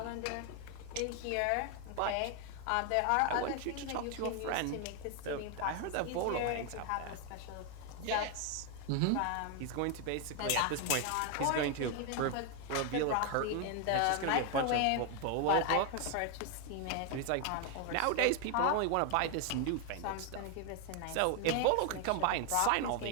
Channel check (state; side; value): different; both; correlation 0.01